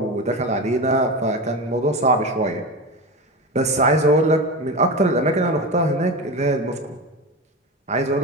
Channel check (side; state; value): both; normal; correlation 0.23